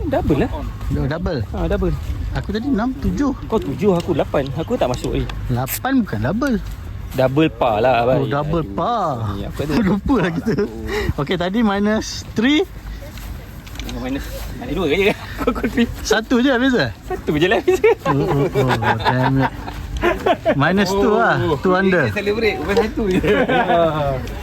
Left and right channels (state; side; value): identical; both; correlation 1.00